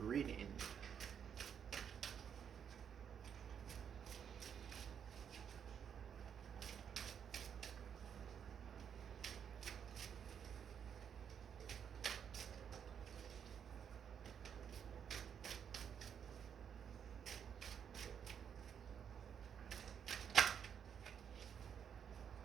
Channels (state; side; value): quieter; left; 7.9 dB